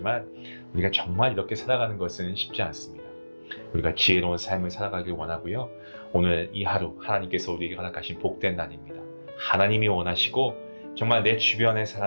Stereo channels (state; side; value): inverted; both; correlation -1.00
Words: 우리가 정말 이렇게 살아가는 것은 쉽지 않습니다. 우리가 지혜로운 삶을 살아가길 원하고요. 오늘 이 하루 하나님께서 우리에게 허락하신 복된 날입니다. 하나님이 원하시고 정말 내 주변의